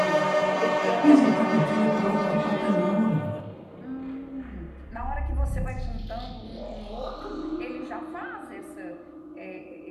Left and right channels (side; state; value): both; identical; correlation 1.00